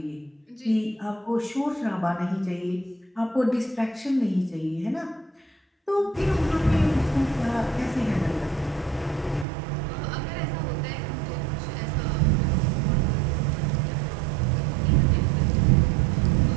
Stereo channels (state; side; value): drops out; left; at 9.5 s